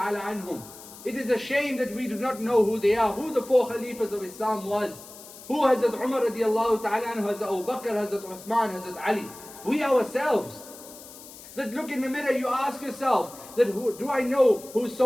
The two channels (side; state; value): left; noise; hiss, 17 dB below the sound